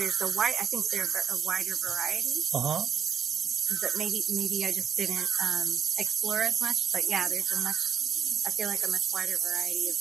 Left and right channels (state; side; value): quieter; left; 7.6 dB